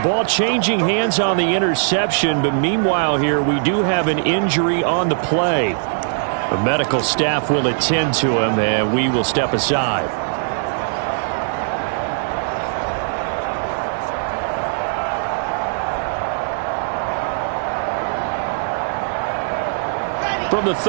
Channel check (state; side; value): silent; left; 56 dB below the other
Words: changing hands on the interception, but meanwhile here we do have an injury on the play. The medical staff will attend to him, and we will step aside. From the